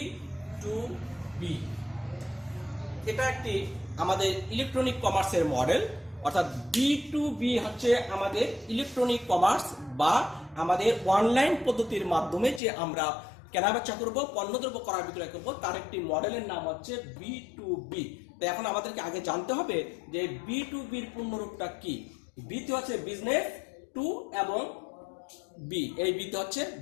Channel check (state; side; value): drops out; right; at 12.6 s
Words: এটা একটি আমাদের ইলেকট্রনিক কমার্সের মডেল। অর্থাৎ B2B হচ্ছে আমাদের ইলেকট্রনিক কমার্স বা আমাদের অনলাইন পদ্ধতির মাধ্যমে যে আমরা কেনাবেচা করব, পণ্যদ্রব্য ক্রয় বিক্রয় করব তার একটি মডেলের নাম হচ্ছে B2B। তো এখন আমাদেরকে আগে জানতে হবে যে B2B এর পূর্ণরূপটা কি। বিতে হচ্ছে বিজনেস, টু এবং বি, এই বিতে হচ্ছে